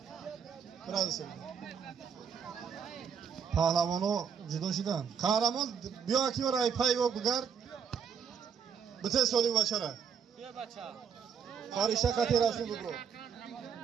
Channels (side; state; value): left; quieter; 7.3 dB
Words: برای سال. پهلوانو جدا شدن. قهرمان بیا کی برای پای و بگرد. بته سالی بچه را. بیا بچه. خارجه کتی رفتیم بگو.